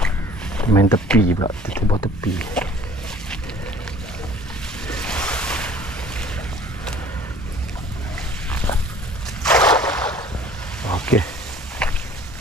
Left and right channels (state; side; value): normal; both; correlation 0.51